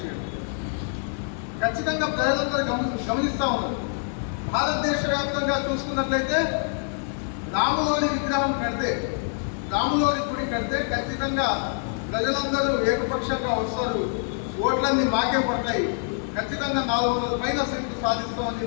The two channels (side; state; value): right; silent; 61 dB below the other